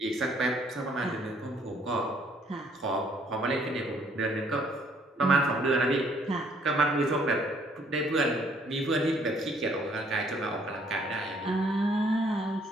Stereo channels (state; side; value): normal; both; correlation 0.64